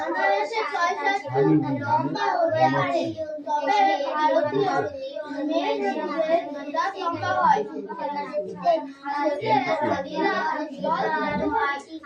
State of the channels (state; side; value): identical; both; correlation 1.00